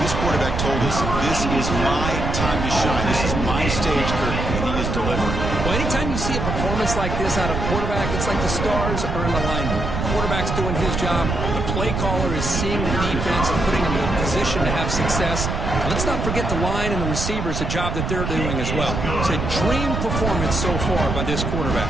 This quarterback told us, this is my time to shine. This is my stage, Kirk, and he is delivering. Well, performance like this out of quarterback, it's like the stars are in alignment. Quarterback's doing his job. The play caller is seeing the defense and putting them in a position to have success. And let's not forget the line and the receivers, the job that they're doing as well. It's a dream performance so far by this quarterback.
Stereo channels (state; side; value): noise; right; rumble, 2 dB below the sound